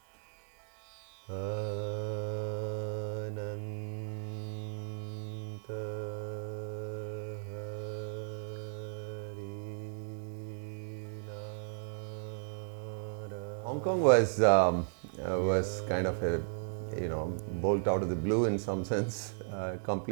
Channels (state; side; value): silent; left; 54 dB below the other